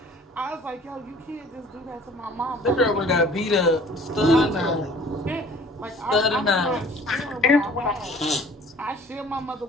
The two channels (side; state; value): both; normal; correlation 0.51